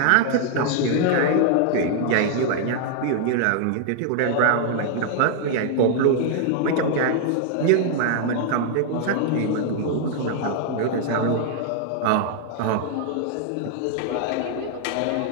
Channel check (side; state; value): both; different; correlation 0.00